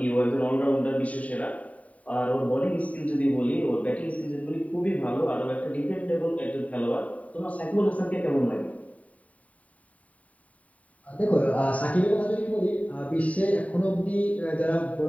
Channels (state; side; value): late; right; 0.068 ms